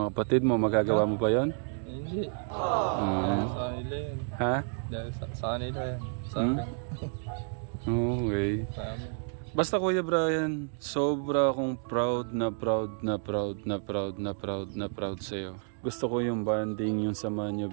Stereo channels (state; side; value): silent; left; 57 dB below the other